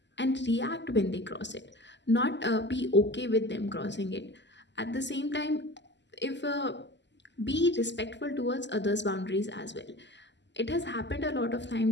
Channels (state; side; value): late; right; 0.52 ms